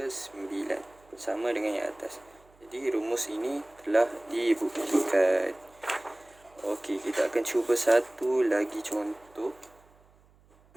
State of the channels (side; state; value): right; noise; hum, 30 dB below the sound